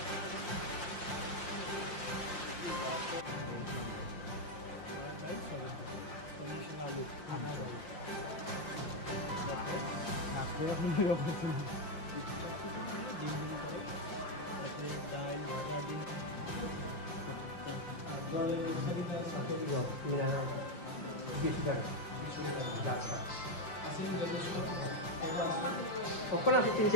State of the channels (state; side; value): late; right; 5.7 ms